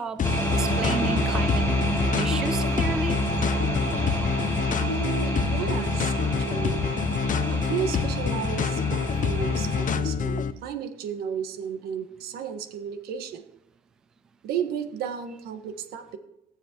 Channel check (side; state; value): both; normal; correlation 0.54